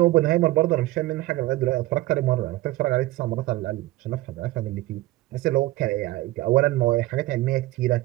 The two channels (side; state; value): left; quieter; 17.5 dB